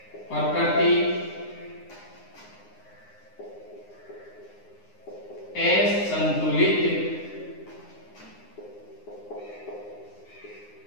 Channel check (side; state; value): right; late; 9.7 ms